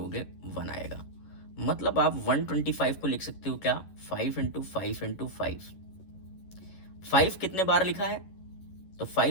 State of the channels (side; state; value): right; late; 11 ms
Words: 1 आएगा। मतलब आप 125 को लिख सकते हो क्या, 5 इंटू 5 इंटू 5। 5 कितने बार लिखा है, तो